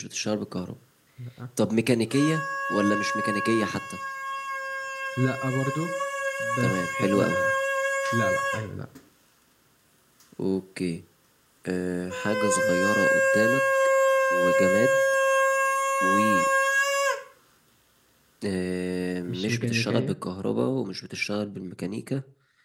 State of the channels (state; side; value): identical; both; correlation 1.00